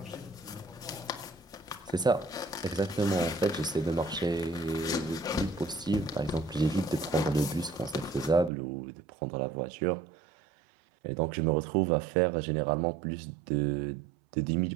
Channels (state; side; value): drops out; left; at 8.5 s